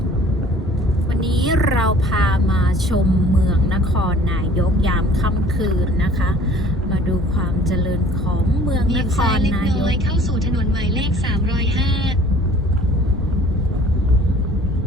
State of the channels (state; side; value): normal; both; correlation 0.51